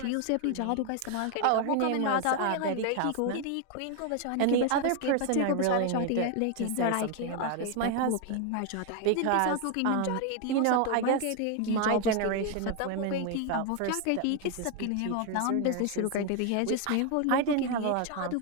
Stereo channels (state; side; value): different; both; correlation 0.01